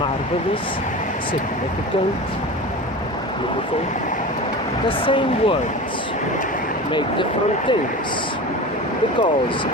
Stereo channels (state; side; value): normal; both; correlation 0.31